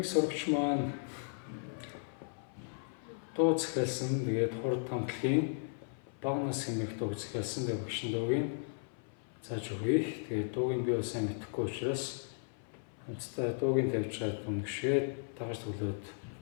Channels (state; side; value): silent; right; 54 dB below the other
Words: сурагч маань дуу захиалсан. Тэгээд хурд хамтлагийн бага нас хэмээх дуу захиалсан. Тэгээд багшин дуугийн зааж өгье. Тэгээд дуугийн би бас сайн мэдэхгүй учраас хамтдаа дуугийн тавьж чад үнгэшээд дагаж төглөөд